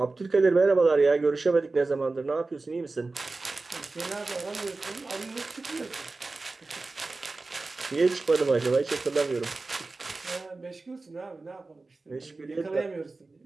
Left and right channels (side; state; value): left; quieter; 3.6 dB